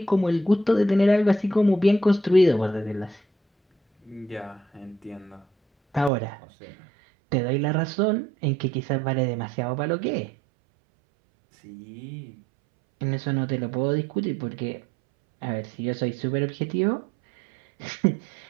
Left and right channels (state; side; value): drops out; left; at 6.1 s